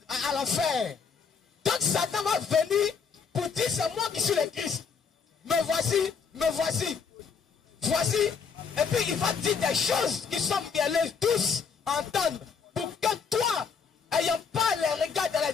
à l'enfer. Donc Satan va venir pour dire, c'est moi qui suis le Christ. Me voici, me voici. Voici. Et puis il va dire des choses qui sont mielleuses, tous entendre. Pour que toi, ayant pas les regards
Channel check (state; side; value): quieter; right; 6.0 dB